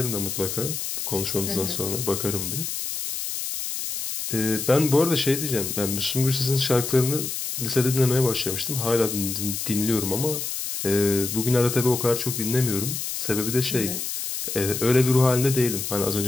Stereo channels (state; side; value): noise; left; hiss, 4 dB below the sound